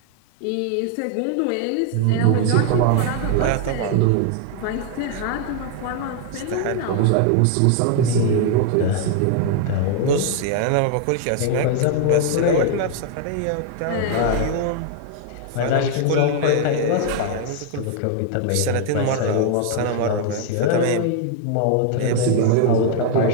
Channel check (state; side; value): different; both; correlation 0.00